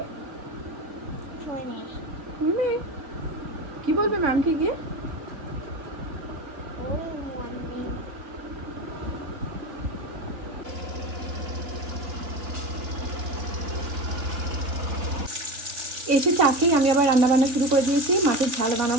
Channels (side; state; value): left; late; 3.5 ms